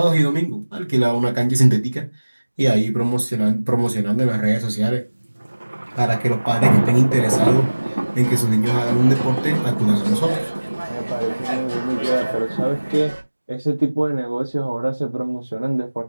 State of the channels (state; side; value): inverted; both; correlation -1.00